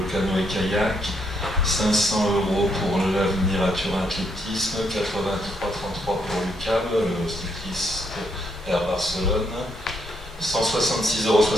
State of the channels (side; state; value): both; normal; correlation 0.76